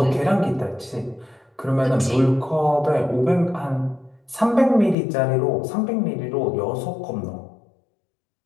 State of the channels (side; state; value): right; drops out; at 5.0 s